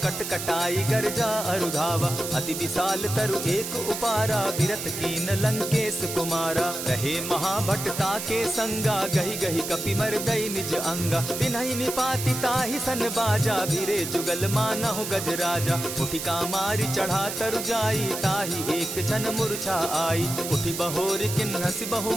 कट कटाई गर्जा अरुधावा। अति विशाल तरु एक उपारा, विरत कीन लंकेश कुमारा। रहे महाभट ताके संगा, गही गही कपि मरदई निज अंगा। तिन्हि निपाति ताहि सन बाजा, भिरे जुगल मानहु गजराजा। उठिका मारी चढ़ा तरु जाई, ताहि एक क्षण मूर्छा आई। उठि बहोर किन्हसि बहु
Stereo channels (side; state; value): right; noise; hiss, 6 dB below the sound